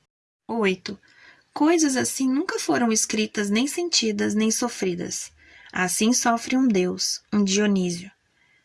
8. Coisas assim nunca foram escritas, nem sentidas, nem sofridas. Assim sofre um Deus, um Dionísio.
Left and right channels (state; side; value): identical; both; correlation 1.00